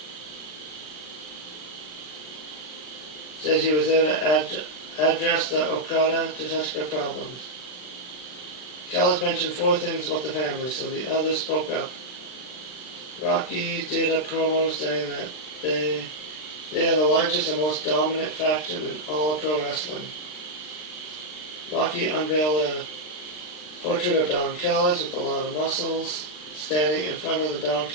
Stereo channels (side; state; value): right; late; 39 ms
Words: to address the Okada-Takeshita problems. Callis mentioned 4 things about the family, so the others spoke up. Rocky did a promo saying that they are the largest and most dominant faction in all of pro wrestling. Rocky unveiled a portrait of Don Callis with a lot of muscles, standing in front of the Don